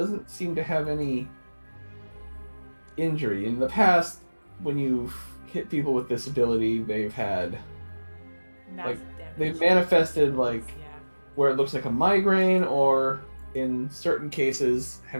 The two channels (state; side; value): inverted; both; correlation -1.00